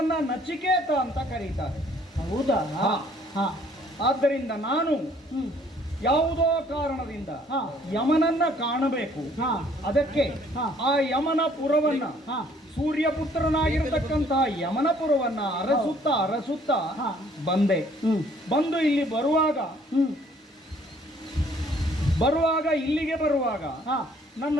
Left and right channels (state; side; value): normal; both; correlation 0.60